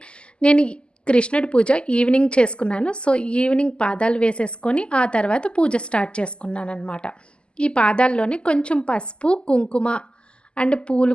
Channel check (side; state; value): right; late; 0.050 ms